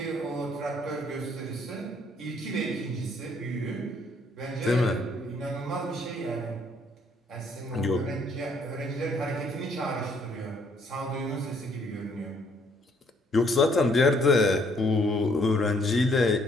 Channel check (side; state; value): both; normal; correlation 0.66